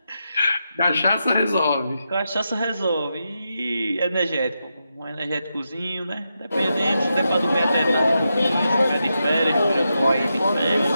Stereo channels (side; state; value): both; inverted; correlation -0.86